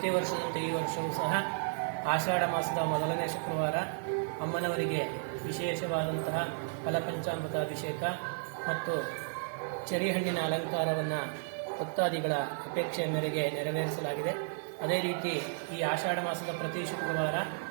ವರ್ಷದಂತೆ ಈ ವರ್ಷವೂ ಸಹ ಆಷಾಢ ಮಾಸದ ಮೊದಲನೇ ಶುಕ್ರವಾರ ಅಮ್ಮನವರಿಗೆ ವಿಶೇಷವಾದಂತಹ ಫಲಪಂಚಾಮೃತ ಅಭಿಷೇಕ ಮತ್ತು ಚೆರಿಹಣ್ಣಿನ ಅಲಂಕಾರವನ್ನು ಭಕ್ತಾದಿಗಳ ಅಪೇಕ್ಷೆಯ ಮೇರೆಗೆ ನೆರವೇರಿಸಲಾಗಿದೆ. ಅದೇ ರೀತಿ ಈ ಆಷಾಢ ಮಾಸದ ಪ್ರತಿ ಶುಕ್ರವಾರ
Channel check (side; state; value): left; silent; 56 dB below the other